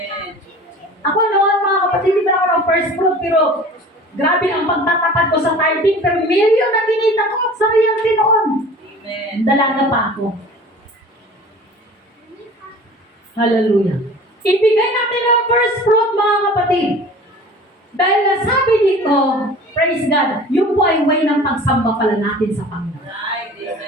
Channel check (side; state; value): both; normal; correlation 0.42